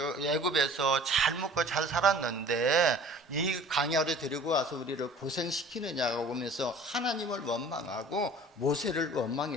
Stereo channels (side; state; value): both; normal; correlation 0.47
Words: 잘 먹고 잘 살았는데 이 광야로 데리고 와서 우리를 고생시키느냐고 보면서 하나님을 원망하고 모세를